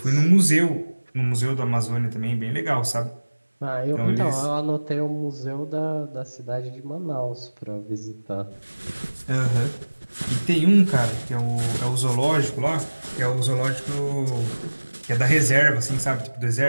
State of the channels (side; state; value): both; inverted; correlation -1.00